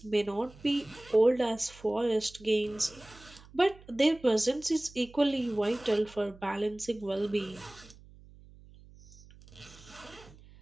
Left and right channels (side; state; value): right; noise; hum, 22 dB below the sound